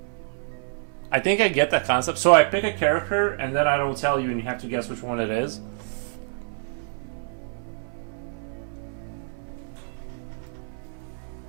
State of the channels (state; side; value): silent; left; 61 dB below the other